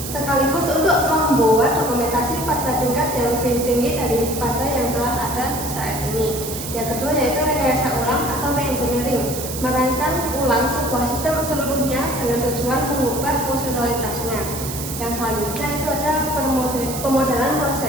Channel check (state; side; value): noise; right; hiss, 8 dB below the sound